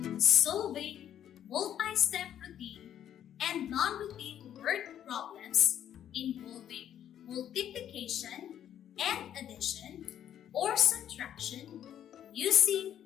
solving multi-step routine and non-routine word problems involving multiplication and addition or subtraction using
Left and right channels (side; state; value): right; quieter; 10.3 dB